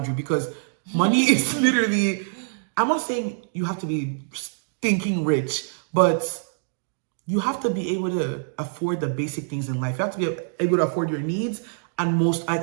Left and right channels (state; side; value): silent; left; digital silence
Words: you because money is literally, I'm not saying you have to be stinking rich, but you have to be able to afford the basic things in life. You have to be able to afford your needs and most,